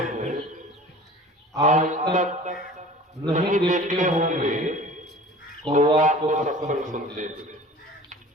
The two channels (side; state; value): both; normal; correlation 0.42